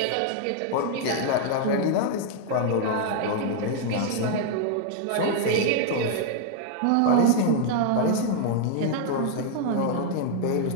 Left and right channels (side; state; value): both; different; correlation 0.00